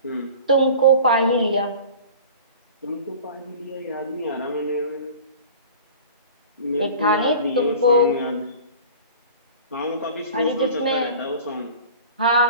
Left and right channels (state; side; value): inverted; both; correlation -0.41